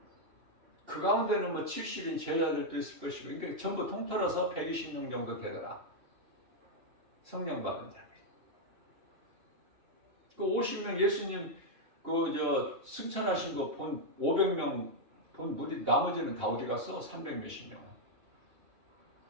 그 가운데는 뭐 70인 제자들도 있을 것이고 그러니까 전부 통틀어서 120명 정도 되더라. 성령 받은 자. 그 50명 예수님 승천하신 거 본 500명 본 무리 나머지는 다 어디 갔어? 300 몇십 명.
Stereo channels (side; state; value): left; late; 2.8 ms